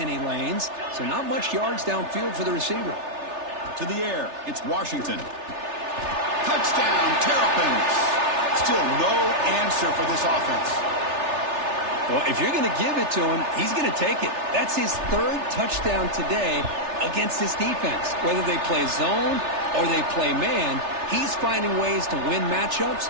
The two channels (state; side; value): late; left; 3.3 ms